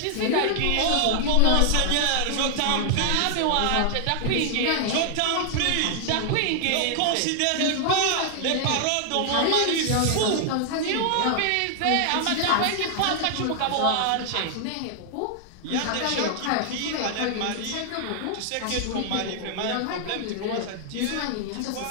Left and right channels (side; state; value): both; different; correlation 0.00